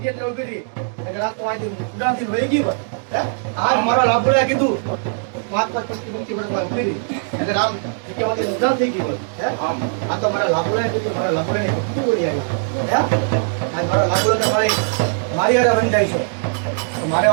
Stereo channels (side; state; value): left; silent; digital silence